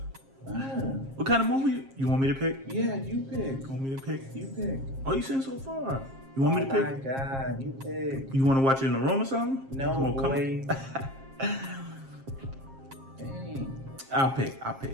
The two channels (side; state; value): left; late; 7.5 ms